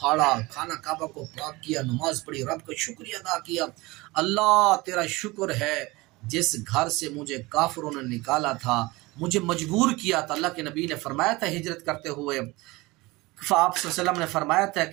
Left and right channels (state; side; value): quieter; left; 22.1 dB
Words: خانہ کعبہ کو پاک کیا، نماز پڑھی، رب کا شکریہ ادا کیا، اللہ تیرا شکر ہے جس گھر سے مجھے کافروں نے نکالا تھا، مجھے مجبور کیا تھا۔ اللہ کے نبی نے فرمایا تھا ہجرت کرتے ہوئے، آپ صلی اللہ علیہ وسلم نے فرمایا تھا